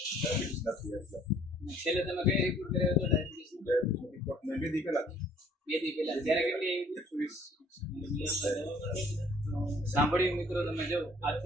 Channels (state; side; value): normal; both; correlation 0.58